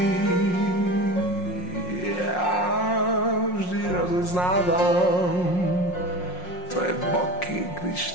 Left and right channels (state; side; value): late; right; 5.6 ms